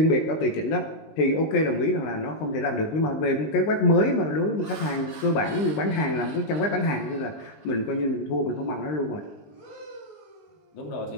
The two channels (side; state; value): right; late; 19 ms